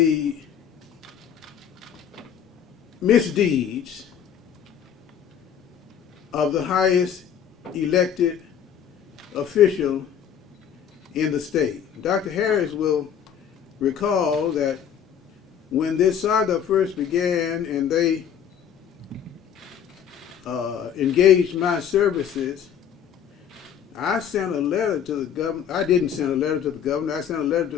misdeeds of the highest elected official in the state. Dr. Harris will recall that when this saga first began and they engaged my services, I sent a letter to the governor. I didn't send a letter to the governor. I sent a letter to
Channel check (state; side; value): quieter; right; 8.5 dB